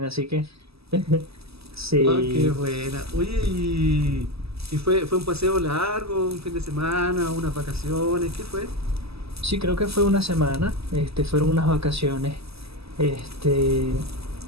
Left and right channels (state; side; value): late; left; 0.78 ms